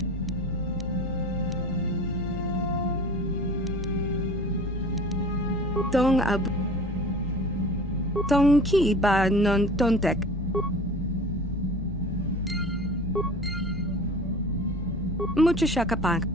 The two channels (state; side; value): normal; both; correlation 0.40